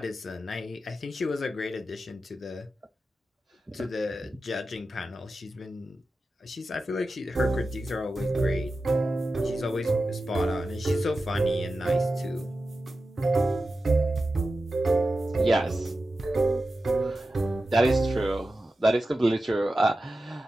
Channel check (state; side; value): normal; both; correlation 0.92